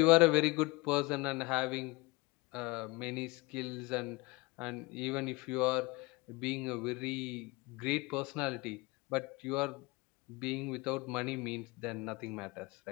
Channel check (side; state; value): right; quieter; 24.4 dB